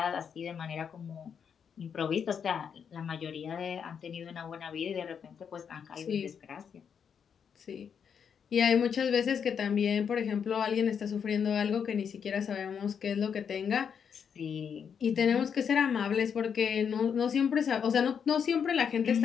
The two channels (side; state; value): right; quieter; 7.2 dB